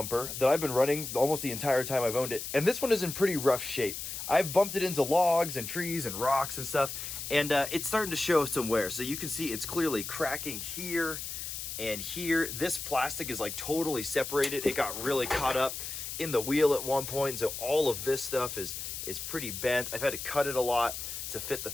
that I've been running almost the entire time I've owned it. And this one is in pretty rough shape. I've bumped it into logs and trees and rocks and stuff, and it's starting to show some wear. So you can see it's clearly cracking here and here. This plastic is like totally separated. It got really caught up in the wheel at one point. So all of this stuff is pretty bent. I've had to cut it a lot to fit the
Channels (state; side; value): noise; left; hiss, 6 dB below the sound